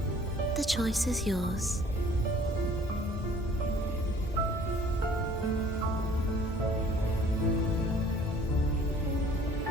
the choice is yours.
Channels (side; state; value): both; normal; correlation 0.54